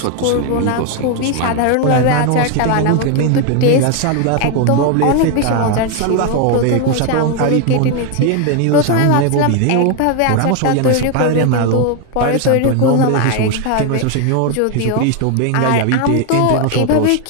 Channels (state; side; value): different; both; correlation 0.01